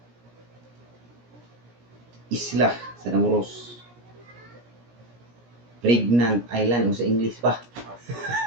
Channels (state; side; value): late; left; 17 ms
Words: Isla sa Namuros. Pregnant Island o sa English pa.